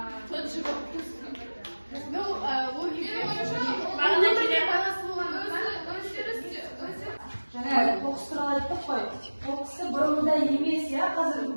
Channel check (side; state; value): both; inverted; correlation -1.00